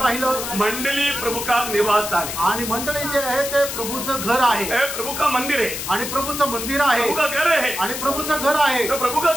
मंडली प्रभु का निवास स्थान है. आणि मंडळी जे आहे ते प्रभूचं घर आहे. प्रभु का मंदिर है. आणि प्रभूचं मंदिर आहे. प्रभु का घर है. आणि प्रभूचं घर आहे. तो प्रभु का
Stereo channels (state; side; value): noise; left; hiss, 6 dB below the sound